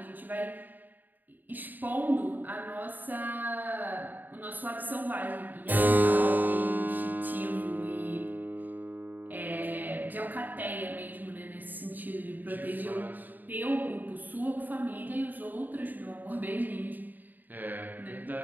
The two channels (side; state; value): left; late; 0.088 ms